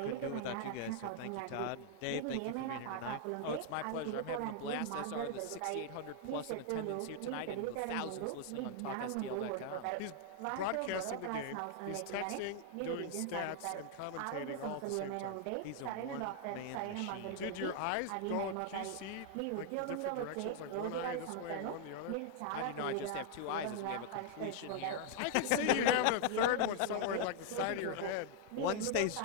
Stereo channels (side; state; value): both; different; correlation 0.00